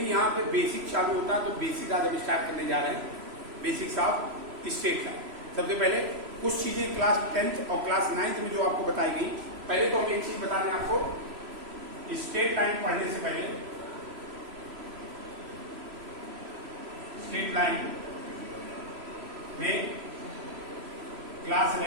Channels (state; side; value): late; left; 3.0 ms